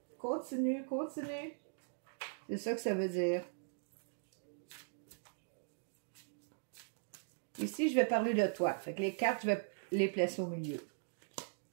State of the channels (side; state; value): left; silent; digital silence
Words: Continue. C'est ça que ça veut dire. Ici, je vais parler de toi. Fait que les cartes, je vais les placer au milieu.